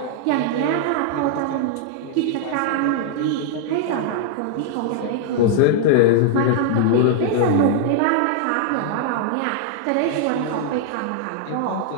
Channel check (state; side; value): different; both; correlation -0.01